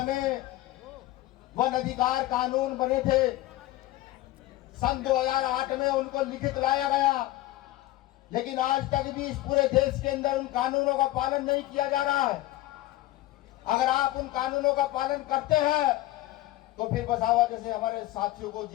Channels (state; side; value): quieter; right; 16.7 dB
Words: में वन अधिकार कानून बने थे। सन 2008 में उनको लिखित लाया गया, लेकिन आज तक भी इस पूरे देश के अंदर उन कानूनों का पालन नहीं किया जा रहा है। अगर आप उन कानूनों का पालन करते हैं तो फिर वसावा जैसे हमारे साथियों को